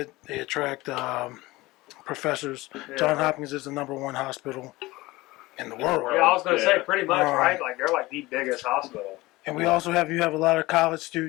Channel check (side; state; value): right; quieter; 20.0 dB